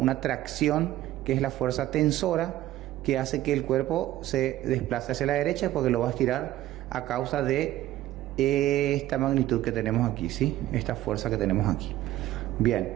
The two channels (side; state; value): left; quieter; 14.6 dB